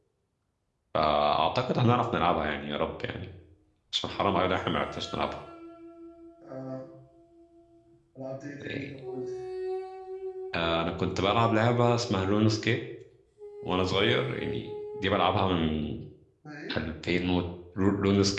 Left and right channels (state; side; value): identical; both; correlation 1.00